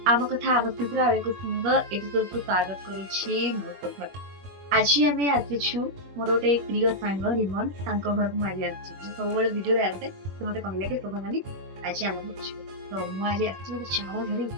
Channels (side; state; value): left; late; 21 ms